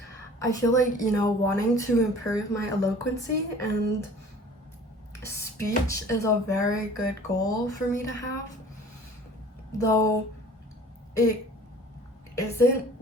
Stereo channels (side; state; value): both; normal; correlation 0.47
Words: you know, wanting to improve my eloquency and speech is a very good goal for me to have, though it isn't